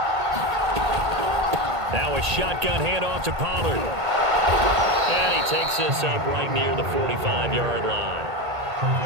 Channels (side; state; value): left; late; 1.8 ms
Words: Now a shotgun handoff to Pollard. And he takes this up right near the 45-yard line.